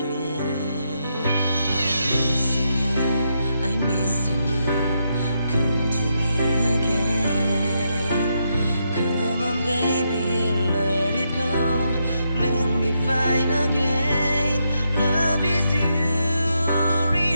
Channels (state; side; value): inverted; both; correlation -0.81